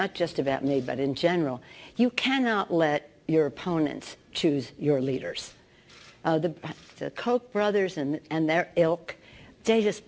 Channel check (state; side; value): identical; both; correlation 1.00